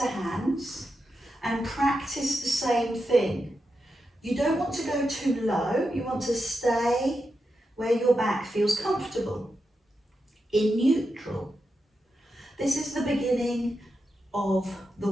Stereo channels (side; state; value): both; normal; correlation 0.88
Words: hands and practice the same thing. You don't want to go too low. You want to stay where your back feels comfortable, in neutral. This is the beginning of the